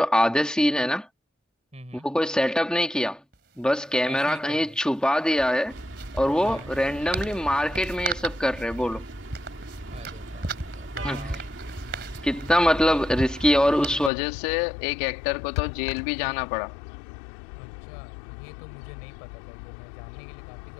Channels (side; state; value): right; drops out; at 14.1 s